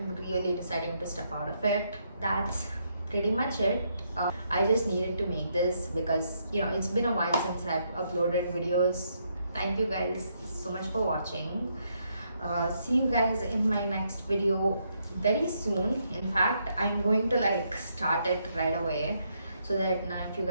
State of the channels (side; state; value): both; inverted; correlation -0.76